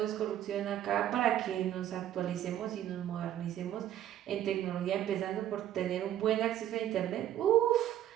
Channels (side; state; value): left; quieter; 11.8 dB